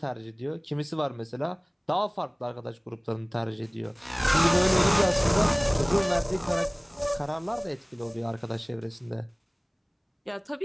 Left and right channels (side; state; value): both; identical; correlation 1.00